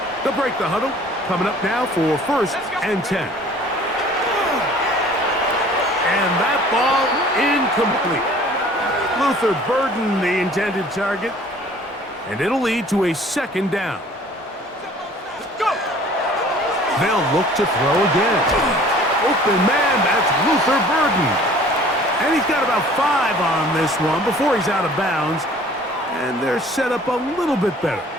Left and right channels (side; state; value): both; normal; correlation 0.51